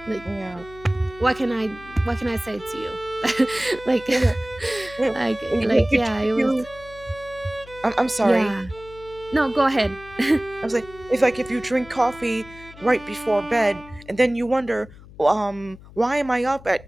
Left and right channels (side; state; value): left; noise; hum, 20 dB below the sound